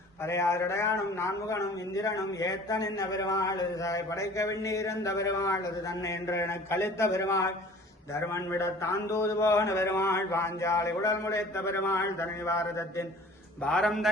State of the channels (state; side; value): normal; both; correlation 0.47